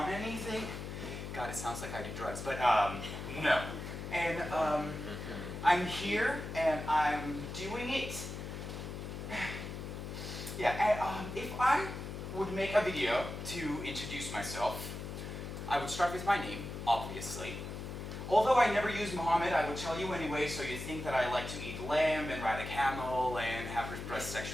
anything. God, it sounds like I do drugs, but no. And I'm here, and I'm doing it. Yeah, and if I would make a video to introduce myself, I would start with my name, obviously. Although I never use Muhammad, I would tell you anyway, so you think that I like to eat lamb and ride a camel and have repressed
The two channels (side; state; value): left; noise; hum, 7 dB below the sound